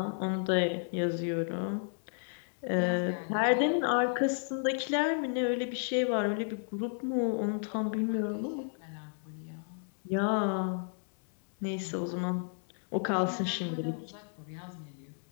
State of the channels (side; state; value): right; silent; digital silence